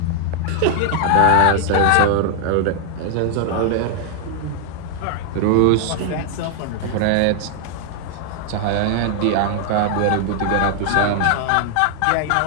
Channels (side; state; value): both; different; correlation 0.00